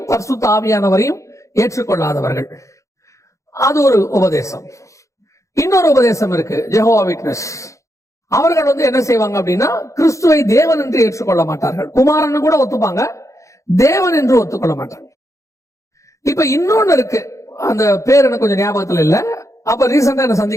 பரிசுத்த ஆவியானவரையும் ஏற்றுக்கொள்ளாதவர்கள், அது ஒரு உபதேசம். இன்னொரு உபதேசம் இருக்கு, ஜெகோவா விட்னஸ். அவர்கள் என்ன செய்வாங்க அப்படின்னா, கிறிஸ்துவை தேவன் என்று ஏற்றுக்கொள்ள மாட்டார்கள், குமாரன் கூட ஒத்துப்பாங்க, தேவன் என்று ஒத்துக்கொள்ள மாட்டாங்க. இப்ப இன்னொன்னு இருக்கு, அந்த பேர் எனக்கு கொஞ்சம் ஞாபகத்துல இல்ல, அப்ப ரீசெண்டா என்ன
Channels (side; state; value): right; late; 0.15 ms